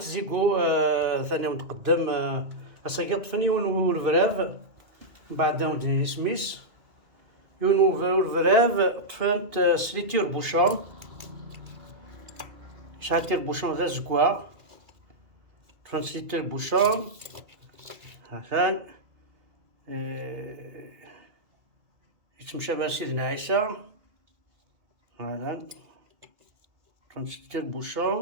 ثاني متقدم أساكي طفني والفراف من بعد ودني سميس والفراف طفنت سليتير بوشون شاتير بوشون ذا زكوا طفنت سليتير بوشون هاثان يتمشى بها سيدنا عيسى هذا طفنت سليتير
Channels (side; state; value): left; late; 2.5 ms